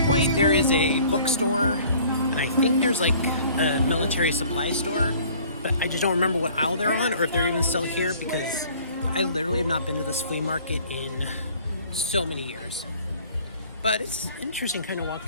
point there is a bookstore, and I think there's, like, a military supply store, but I just don't remember what aisle they're on, or if they're even still here, because I literally have not been to this flea market in so many years. But it's interesting kind of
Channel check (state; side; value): inverted; both; correlation -0.52